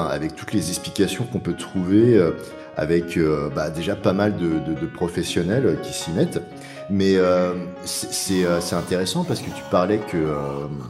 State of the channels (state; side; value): identical; both; correlation 1.00